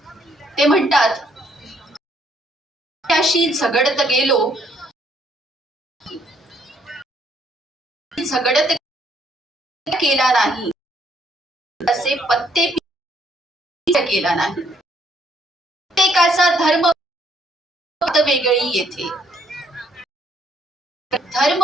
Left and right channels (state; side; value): normal; both; correlation 0.68